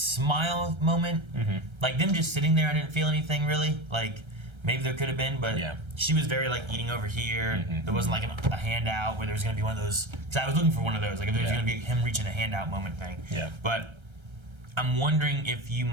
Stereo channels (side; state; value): left; late; 1.3 ms